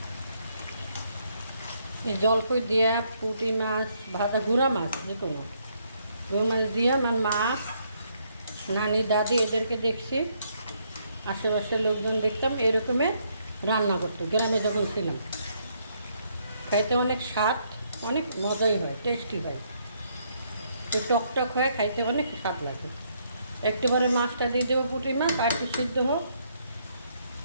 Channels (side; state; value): both; inverted; correlation -0.72